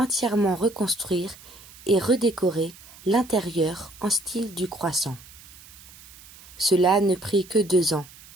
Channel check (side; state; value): right; noise; hiss, 21 dB below the sound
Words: reconstruire et redécorer l'intérieur en style du croissant. Cela ne prit que 2 ans,